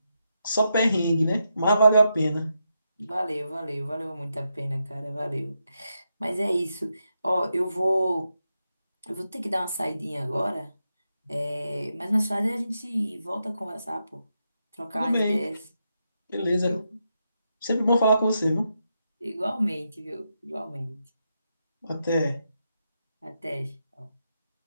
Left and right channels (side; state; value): both; inverted; correlation -0.84